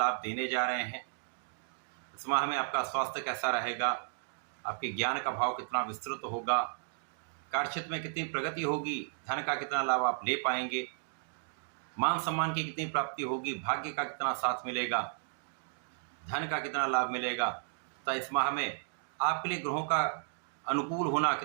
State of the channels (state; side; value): silent; left; digital silence